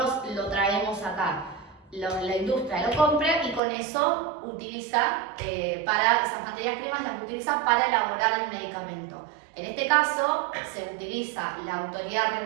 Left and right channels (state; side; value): drops out; left; at 3.6 s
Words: lo traemos acá. La industria lo compra y con eso utiliza, para esas materias primas las utiliza para elaborar el medicamento. En este caso se utiliza la autoridad